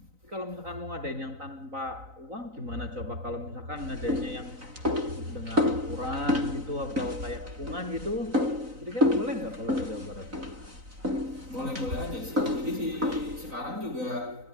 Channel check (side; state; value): left; late; 3.9 ms